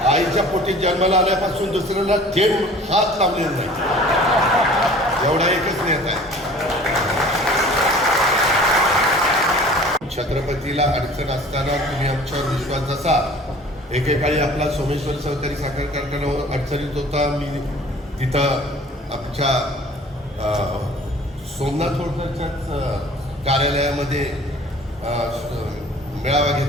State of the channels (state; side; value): normal; both; correlation 0.47